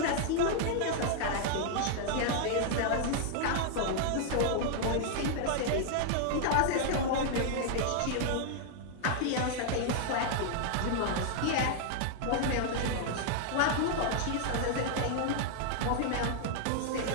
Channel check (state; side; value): different; both; correlation 0.00